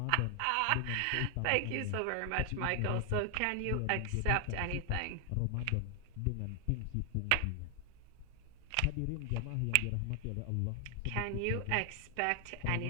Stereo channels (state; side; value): different; both; correlation 0.00